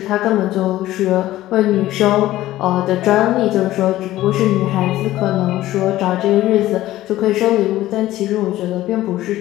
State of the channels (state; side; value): quieter; right; 15.2 dB